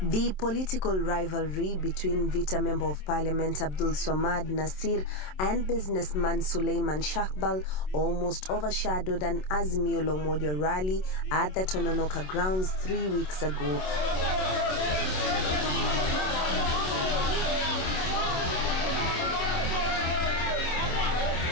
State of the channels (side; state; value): right; late; 27 ms